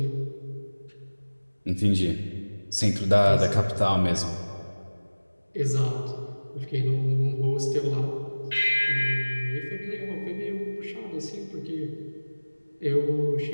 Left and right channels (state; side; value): inverted; both; correlation -1.00